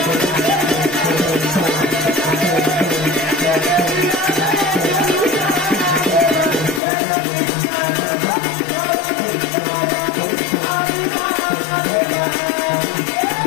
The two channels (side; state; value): right; drops out; at 6.8 s